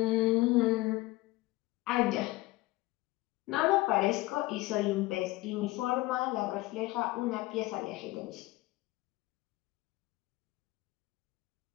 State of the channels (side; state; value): right; quieter; 19.6 dB